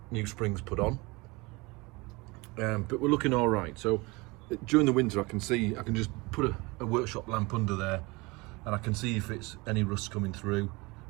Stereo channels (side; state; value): left; quieter; 24.7 dB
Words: new springs put on. But we're looking all right. So during the winter, I can just put a workshop lamp under there, and I can see if it's any rust coming through,